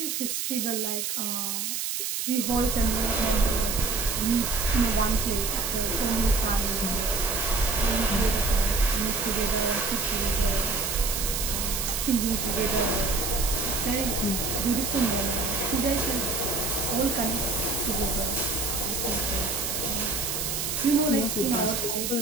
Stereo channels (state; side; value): noise; right; hiss, 2 dB below the sound